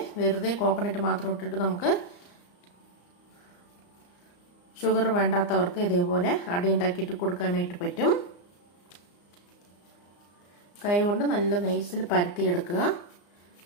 വെറുതെ കോക്കനട്ട് മാത്രം ഇട്ടിട്ട് നമുക്ക് ഷുഗർ വേണ്ടാത്തവർക്ക് ഇതേപോലെ അട ഉണ്ടാക്കിയിട്ട് കൊടുക്കാനായിട്ട് പറ്റും. കൈ കൊണ്ട് നല്ല നൈസിൽ പരത്തിയെടുക്കുക.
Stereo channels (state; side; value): late; right; 34 ms